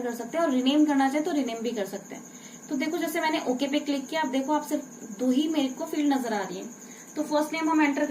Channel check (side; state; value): both; identical; correlation 1.00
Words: कर सकते हैं, और रिनेम करना चाहे तो रिनेम भी कर सकते हैं। तो देखो जैसे मैंने ओके पे क्लिक किया, अब देखो आप सिर्फ 2 ही मेरे को फील्ड नजर आ रही है। तो फर्स्ट नेम हम एंटर